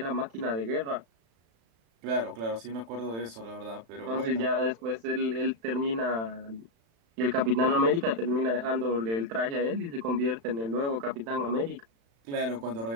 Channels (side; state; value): left; late; 35 ms